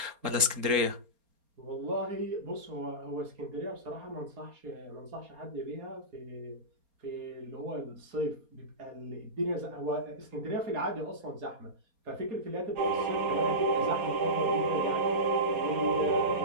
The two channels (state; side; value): late; left; 4.3 ms